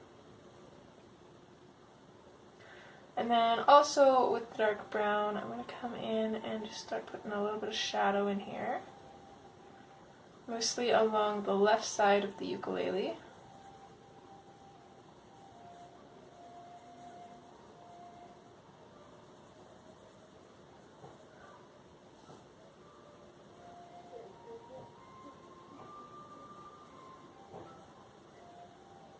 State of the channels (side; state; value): both; identical; correlation 1.00